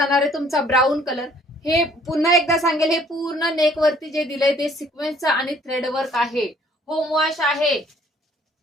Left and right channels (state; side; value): normal; both; correlation 0.59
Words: आहे तुमचा ब्राऊन कलर. हे पुन्हा एकदा सांगेल, हे पूर्ण नेक वरती जे दिलंय ते सिक्वेन्सचं आणि थ्रेड वर्क आहे. होम वॉश आहे.